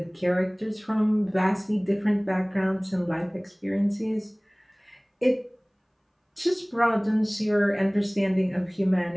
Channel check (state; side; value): identical; both; correlation 1.00